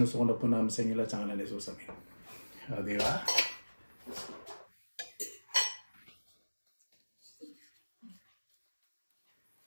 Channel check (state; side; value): inverted; both; correlation -1.00